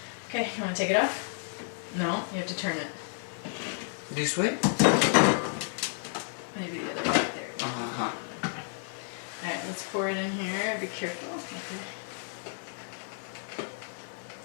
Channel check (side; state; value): right; silent; 57 dB below the other